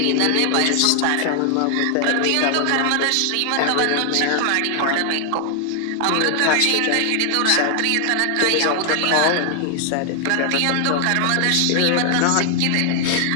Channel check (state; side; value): different; both; correlation 0.00